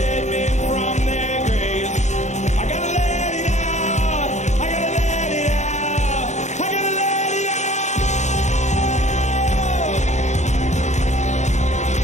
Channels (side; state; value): right; late; 0.34 ms